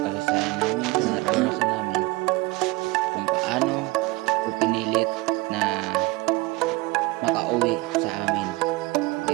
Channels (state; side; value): quieter; left; 21.7 dB